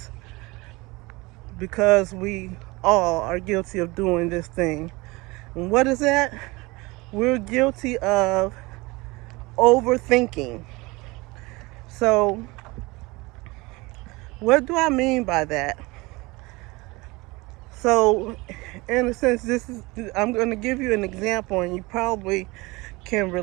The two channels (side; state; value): left; quieter; 23.4 dB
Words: because we all are guilty of doing this thing. And what is that? We're guilty of overthinking. So, what do I mean by that? So, in a sense, I'm going to give you an example, and you probably can